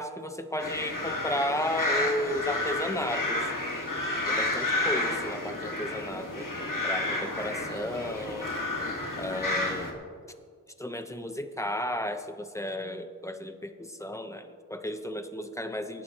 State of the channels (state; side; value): normal; both; correlation 0.26